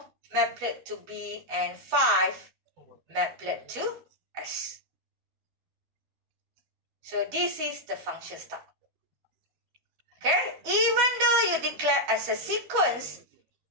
maplet to B, and 5, maplet to S. So this is the function style. Okay, even though you declare as a sequence,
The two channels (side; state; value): left; late; 13 ms